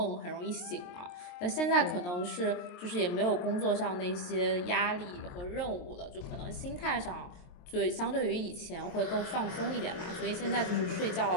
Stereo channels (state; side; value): late; right; 23 ms